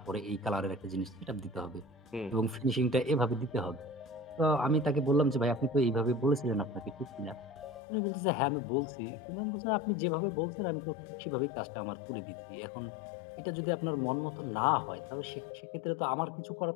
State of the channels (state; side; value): drops out; right; at 7.8 s